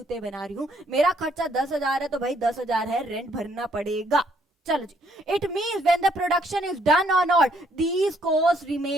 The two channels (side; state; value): both; normal; correlation 0.68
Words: बना रही हूँ, मेरा खर्चा 10,000 है तो भाई 10,000 है, रेंट भरना पड़ेगा। चलो जी, it means when the production is done और not these cost